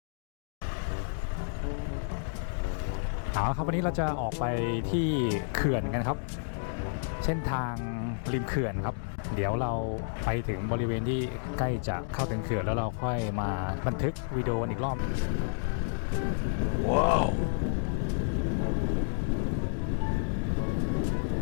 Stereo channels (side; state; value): right; silent; digital silence